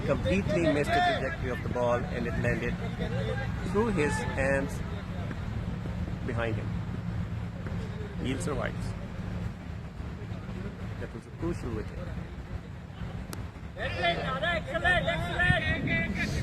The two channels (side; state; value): both; identical; correlation 1.00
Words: missed the trajectory of the ball, and it landed through his hands behind him. Neil survives. That was a crucial wicket.